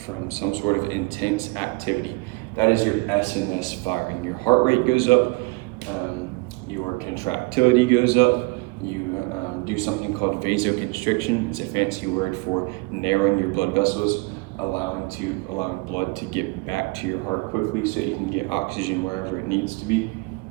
some sort of intense activity, that is your SNS firing. Your heart rate goes up, your contractility goes up, you do something called vasoconstriction. It's a fancy word for narrowing your blood vessels, allowing blood to get back to your heart quickly so you can get oxygen wherever it needs to be.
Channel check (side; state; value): left; quieter; 26.6 dB